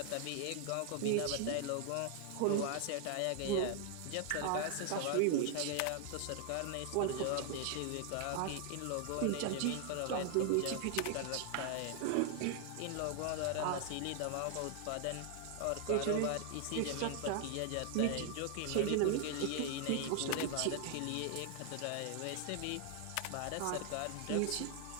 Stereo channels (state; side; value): different; both; correlation 0.00